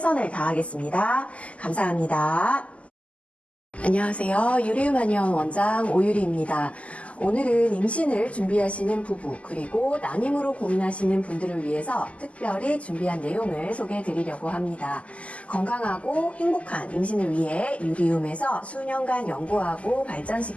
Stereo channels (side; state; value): right; late; 0.064 ms